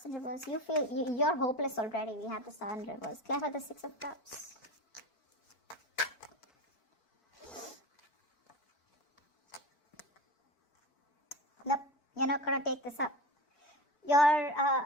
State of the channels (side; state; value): right; late; 4.5 ms